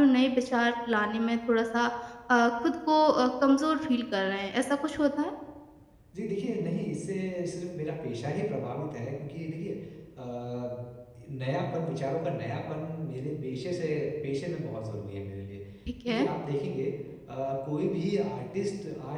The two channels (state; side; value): identical; both; correlation 1.00